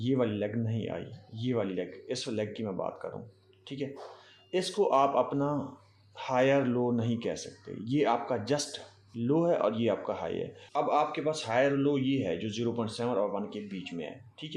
वाली लेग नहीं आई, ये वाली लेग, इस लेग की मैं बात कर रहा हूँ, ठीक है। इसको आप अपना हायर लो नहीं कह सकते। ये आपका जस्ट लो है और ये आपका हाई है। अब आपके पास हायर लो ये है जो 0.7 और 1 के बीच में है, ठीक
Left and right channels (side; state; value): both; identical; correlation 1.00